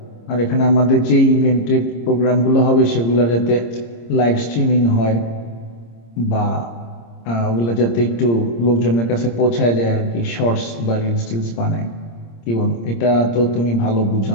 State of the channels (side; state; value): right; late; 26 ms